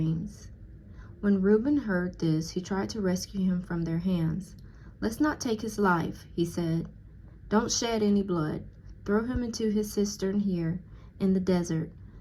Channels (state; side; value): identical; both; correlation 1.00